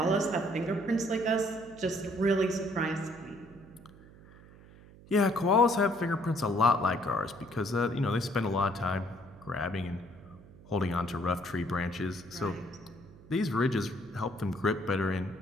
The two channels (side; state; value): right; noise; hum, 21 dB below the sound